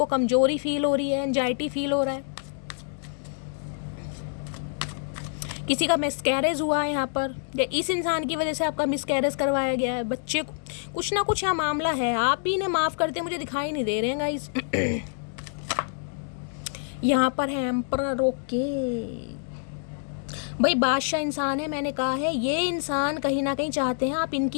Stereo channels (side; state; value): right; silent; digital silence